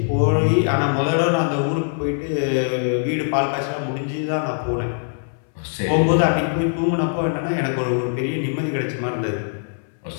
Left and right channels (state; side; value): silent; right; 64 dB below the other